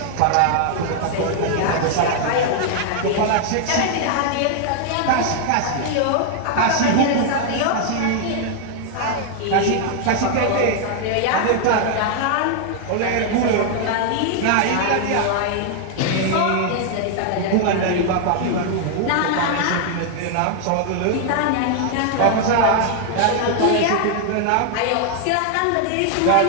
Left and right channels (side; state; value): both; different; correlation 0.00